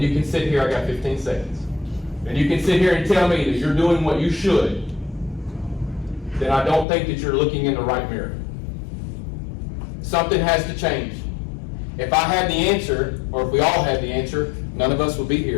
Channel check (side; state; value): right; drops out; at 6.9 s